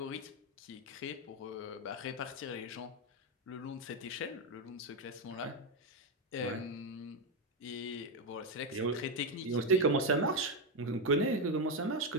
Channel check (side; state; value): both; normal; correlation 0.07